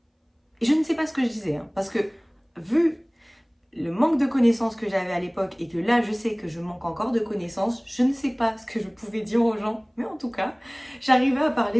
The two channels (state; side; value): identical; both; correlation 1.00